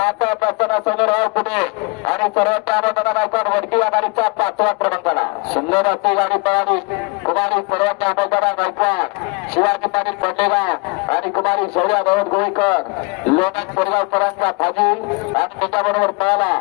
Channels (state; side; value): quieter; right; 29.6 dB